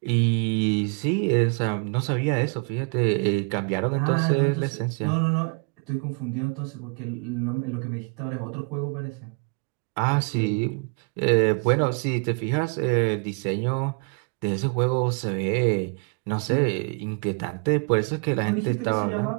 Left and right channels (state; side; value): quieter; left; 36.7 dB